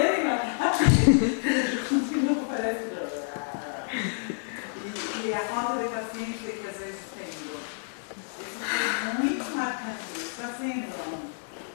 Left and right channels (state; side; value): silent; right; digital silence